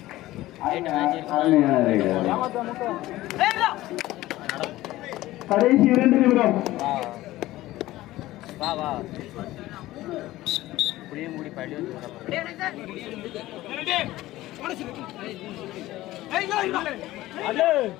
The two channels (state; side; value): quieter; right; 16.6 dB